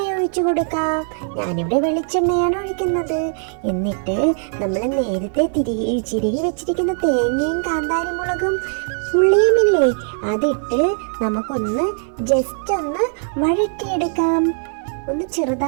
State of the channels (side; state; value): left; silent; 66 dB below the other